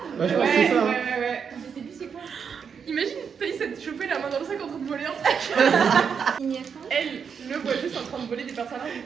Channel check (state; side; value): quieter; left; 6.7 dB